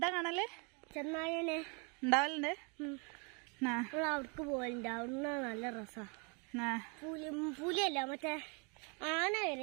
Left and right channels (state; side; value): quieter; left; 34.2 dB